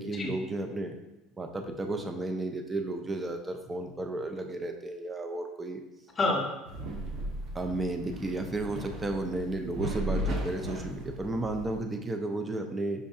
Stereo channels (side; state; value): both; normal; correlation 0.67